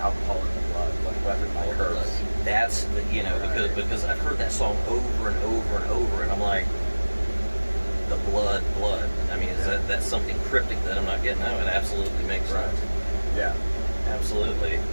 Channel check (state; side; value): inverted; both; correlation -1.00